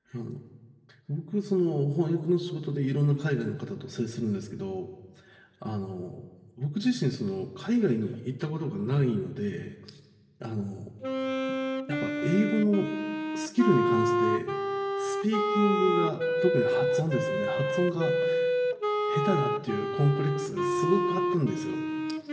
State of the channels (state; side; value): identical; both; correlation 1.00